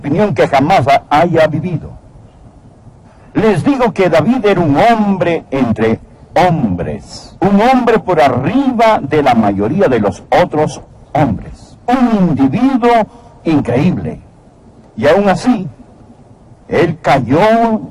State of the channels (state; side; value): identical; both; correlation 1.00